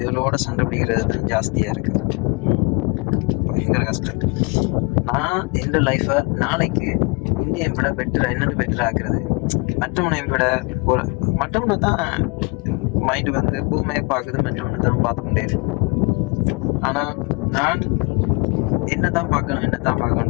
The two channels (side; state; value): right; quieter; 30.7 dB